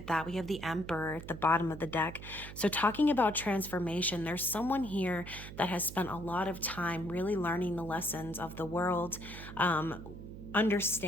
that. We have the Emperor at the bottom of the deck. So talking about transformation, there's someone here that has spent a lot of time really learning the lessons of the world,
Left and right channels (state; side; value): noise; right; hum, 12 dB below the sound